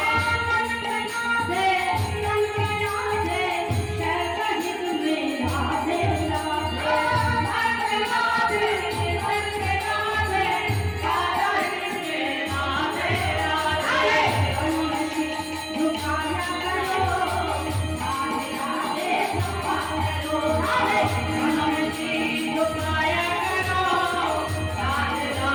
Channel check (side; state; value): both; identical; correlation 1.00